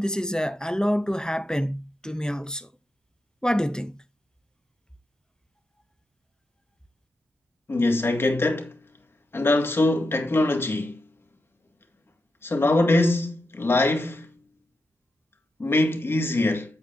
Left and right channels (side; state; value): both; normal; correlation 0.86